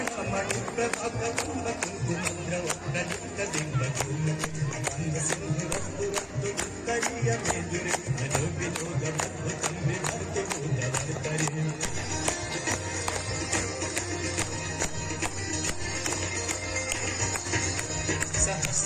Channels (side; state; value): both; identical; correlation 1.00